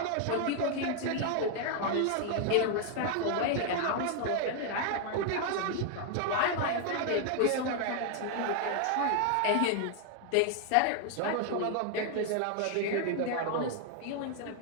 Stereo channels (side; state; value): both; different; correlation 0.00